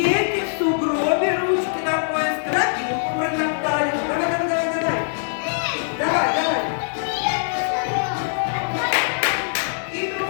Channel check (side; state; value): right; silent; 64 dB below the other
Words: в сугробе, ручки на пояс, тропинку протоптали. Давай, давай, давай, давай. Давай, давай. И